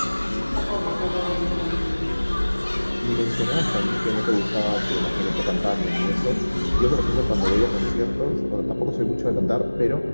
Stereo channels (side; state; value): both; inverted; correlation -1.00